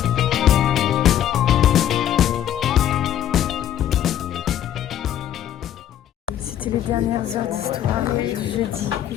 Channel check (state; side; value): quieter; right; 11.0 dB